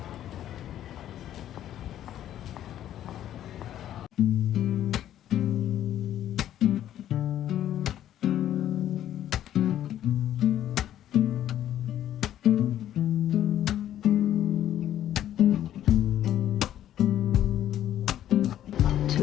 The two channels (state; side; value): quieter; right; 11.7 dB